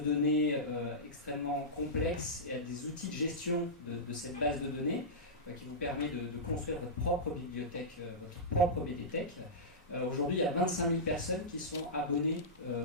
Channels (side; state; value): both; normal; correlation -0.15